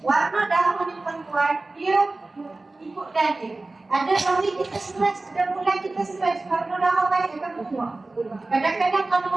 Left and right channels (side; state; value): left; quieter; 3.2 dB